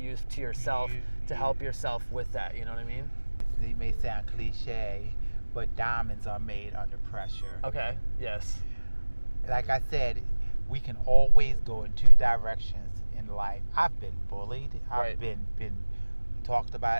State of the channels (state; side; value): inverted; both; correlation -1.00